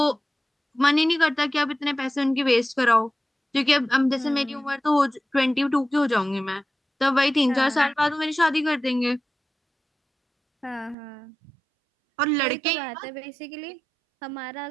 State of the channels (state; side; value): drops out; left; at 11.0 s